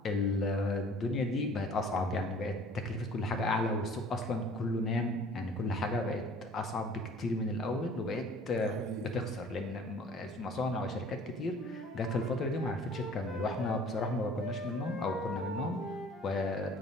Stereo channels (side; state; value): both; normal; correlation 0.50